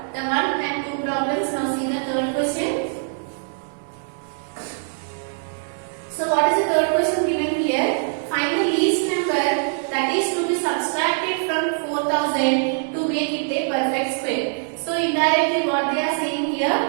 the 1 and 2 problems. Now see the third question. So what is the third question given here? Find the least number that is to be subtracted from 4000 to make it a perfect square. So indirectly what they are saying here,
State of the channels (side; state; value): left; silent; digital silence